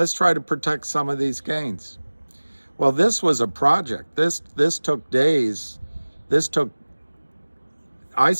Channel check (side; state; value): both; inverted; correlation -1.00